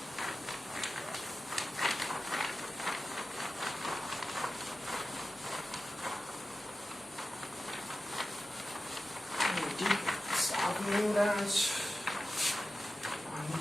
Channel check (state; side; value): normal; both; correlation 0.94